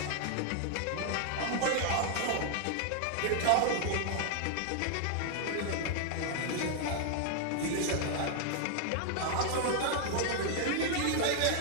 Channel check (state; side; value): different; both; correlation 0.00